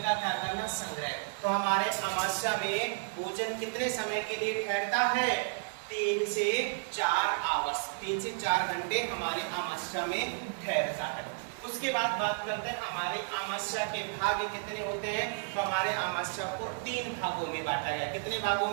का क्या करना? संग्रह। तो हमारे अमावस्या में भोजन कितने समय के लिए ठहरता है? 3 से 4 आवर्स, 3 से 4 घंटे हमारे अमावस्या में ठहरता है। उसके बाद बात करते हैं हमारे अमावस्या के भाग कितने होते हैं। तो हमारे अमावस्या को 3 भागों में बांटा गया। कितने भागों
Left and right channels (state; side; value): silent; left; digital silence